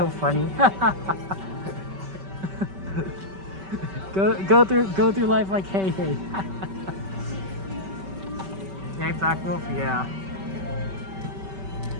funny. go through life like, hey, hey. Hey, Black Wolf, yeah.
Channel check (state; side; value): late; left; 5.2 ms